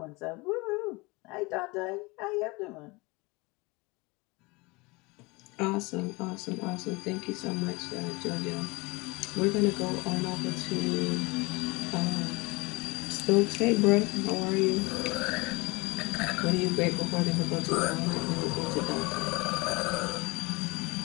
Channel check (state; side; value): quieter; right; 25.1 dB